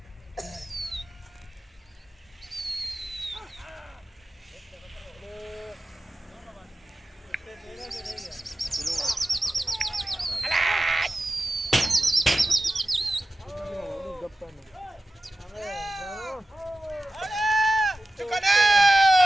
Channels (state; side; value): normal; both; correlation 0.94